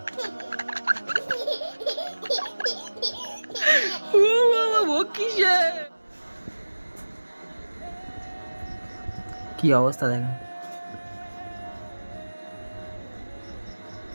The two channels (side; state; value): both; inverted; correlation -1.00